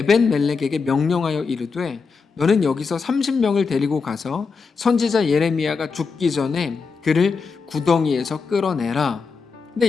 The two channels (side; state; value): right; quieter; 5.0 dB